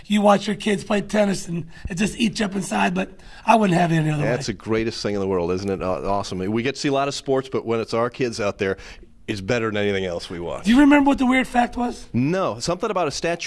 you watch your kids play tennis, and it just eats you up inside. But I wouldn't have it any other way. That's the greatest thing in the world, isn't it? Awesome. We get to see a lot of sports, but when it's our kids out there, it's better than anything else we watch. Do you remember what the weird fact was? No, something about a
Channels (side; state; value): both; identical; correlation 1.00